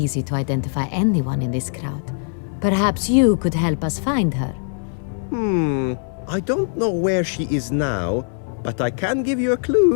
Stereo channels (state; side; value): silent; right; digital silence